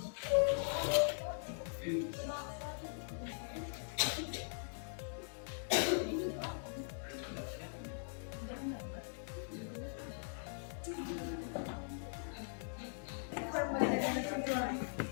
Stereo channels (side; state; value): right; silent; digital silence